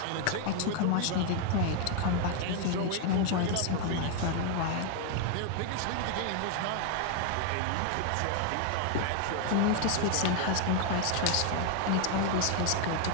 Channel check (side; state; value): both; different; correlation 0.00